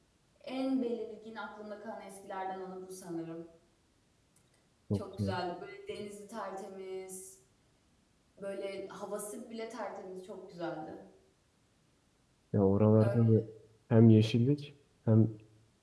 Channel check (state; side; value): identical; both; correlation 1.00